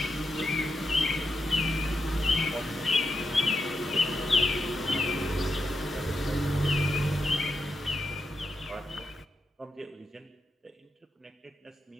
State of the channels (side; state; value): both; normal; correlation 0.85